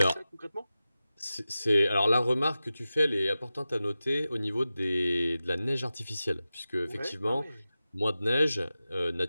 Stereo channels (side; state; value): both; inverted; correlation -0.94